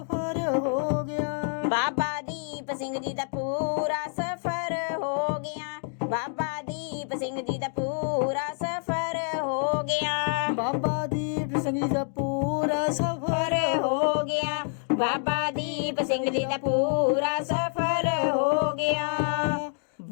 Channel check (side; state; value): right; silent; 59 dB below the other